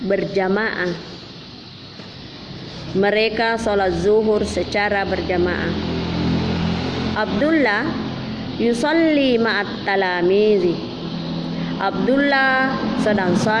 berjamaah. Mereka sholat zuhur secara berjamaah. Abdullah yusalli ma'at talamizi. Abdullah sedang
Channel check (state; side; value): identical; both; correlation 1.00